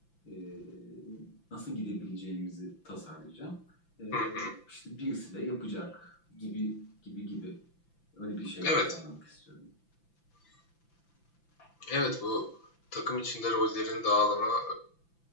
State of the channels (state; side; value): late; right; 5.9 ms